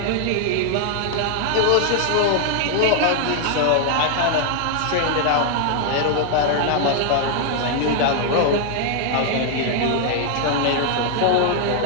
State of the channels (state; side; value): different; both; correlation 0.00